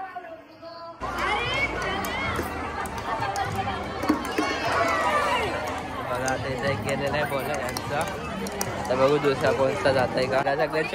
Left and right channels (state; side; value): identical; both; correlation 1.00